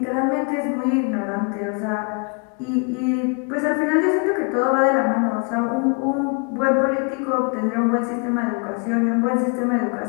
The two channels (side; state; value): right; quieter; 36.6 dB